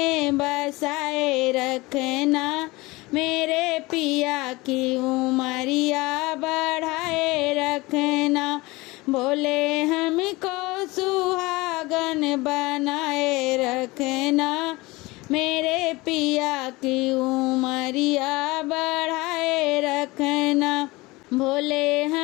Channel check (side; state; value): right; quieter; 22.2 dB